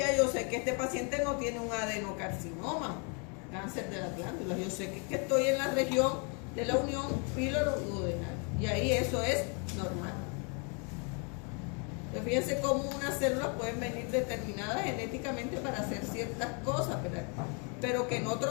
yo sé que este paciente no tiene un adenocarcinoma, cáncer de las glándulas. Yo sé que estoy en la región de la unión píloro-duodenal. Y ahí eso es normal. Entonces fíjense cómo unas células pueden venir determinadas genéticamente para hacer ciertas cosas, ¿verdad? Pero que en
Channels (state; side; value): quieter; right; 36.5 dB